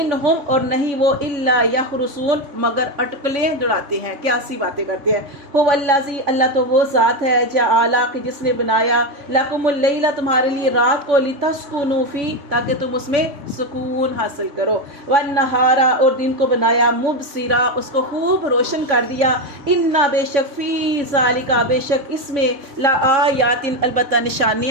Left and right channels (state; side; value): late; left; 3.5 ms